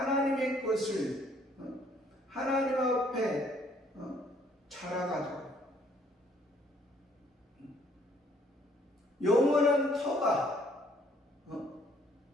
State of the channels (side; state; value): both; normal; correlation 0.63